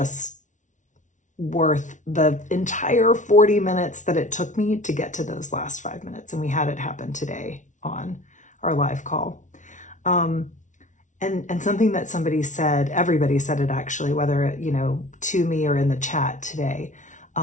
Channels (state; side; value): late; right; 0.37 ms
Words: worth the entire 40 minutes that it took me to get to those last 5 minutes. And we had it happen today on our live call. And something that somebody said, everybody said it actually, whether, to me or in the chat today,